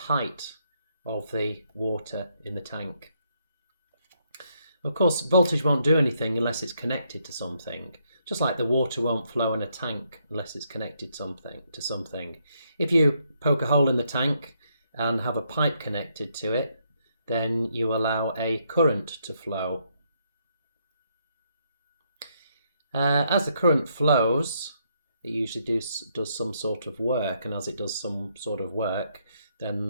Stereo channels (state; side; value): inverted; both; correlation -0.74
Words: height of the water in the tank. Of course, voltage won't do anything unless it's connected to something. Just like the water won't flow in a tank unless it's connected to something. If you poke a hole in the tank and have a pipe connected to it, then you allow a current to flow. As the current flows, it usually does some sort of work, and as it does some sort of work,